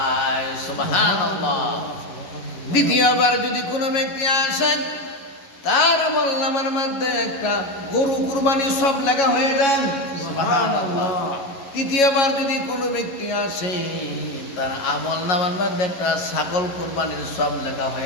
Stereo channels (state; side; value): late; right; 11 ms